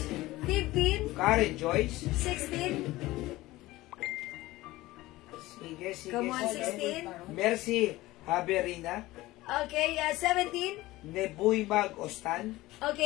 15. Karen Joyce. 16. Sige. Come on, sige. 16. Mercy Haberina. Okay, 17. Nebuy Mag Ostan.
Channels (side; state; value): right; quieter; 18.2 dB